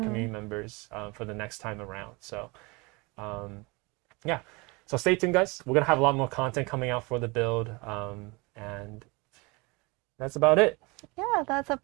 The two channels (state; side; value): quieter; left; 26.7 dB